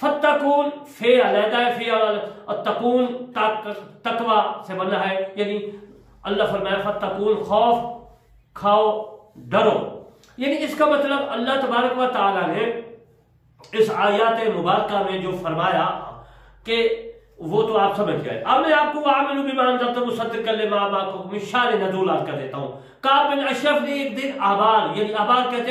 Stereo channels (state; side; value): identical; both; correlation 1.00